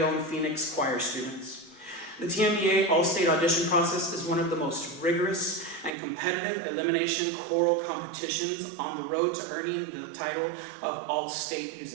own Phoenix choir students. The TMEA All-State Audition process is one of the most rigorous and competitive elimination choral competitions on the road to earning the title of All-State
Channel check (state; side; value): drops out; left; at 5.9 s